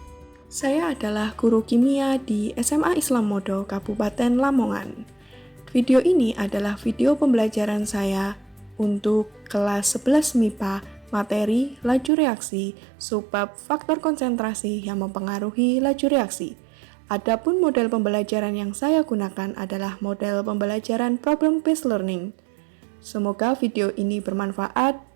Saya adalah guru kimia di SMA Islam Modo, Kabupaten Lamongan. Video ini adalah video pembelajaran saya untuk kelas 11 MIPA, materi laju reaksi, subbab faktor konsentrasi yang mempengaruhi laju reaksi. Adapun model pembelajaran yang saya gunakan adalah model pembelajaran problem based learning. Semoga video ini bermanfaat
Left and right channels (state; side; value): drops out; left; at 12.1 s